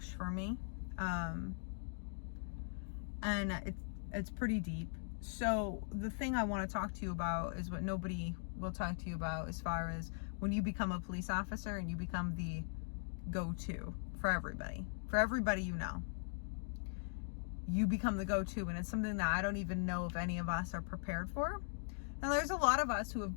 for me, and it's pretty deep. So the thing I want to talk to you about is what nobody will talk to you about, as far as when you become a police officer and you become the go-to for everybody you know. You become the go-to, and it's something that I don't even know if any of us are prepared for. And there's a lot of us who have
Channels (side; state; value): right; silent; digital silence